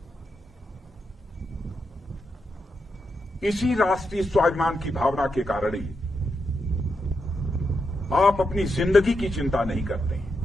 इसी राष्ट्रीय स्वाभिमान की भावना के कारण ही आप अपनी जिंदगी की चिंता नहीं करते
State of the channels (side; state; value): both; normal; correlation 0.84